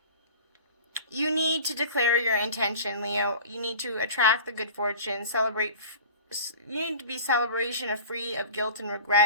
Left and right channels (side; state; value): both; inverted; correlation -0.40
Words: You need to declare your intention, Leo. You need to attract the good fortune, celebrate. You need to be celebration free of guilt and